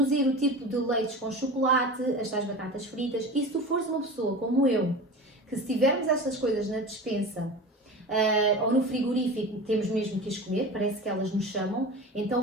o tipo de leites com chocolate, as tais batatas fritas, e se tu fores uma pessoa como eu, que se tivermos estas coisas na despensa ou no frigorífico, temos mesmo que as comer, parece que elas nos chamam,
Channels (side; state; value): both; normal; correlation 0.32